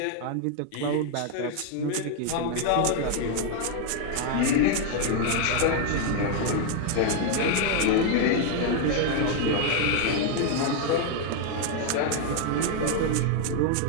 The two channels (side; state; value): both; different; correlation 0.00